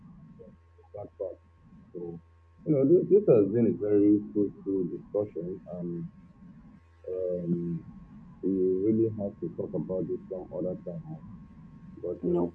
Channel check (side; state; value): both; identical; correlation 1.00